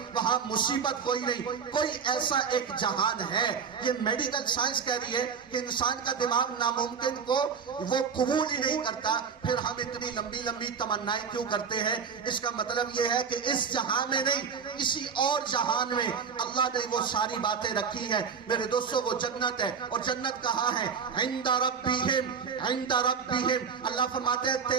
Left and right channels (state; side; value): quieter; left; 6.3 dB